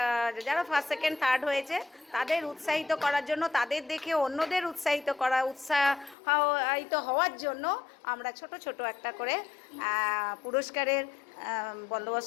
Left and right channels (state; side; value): drops out; right; at 6.2 s